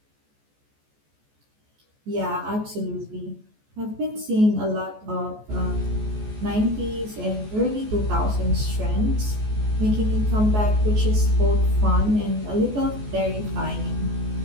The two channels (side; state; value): left; late; 14 ms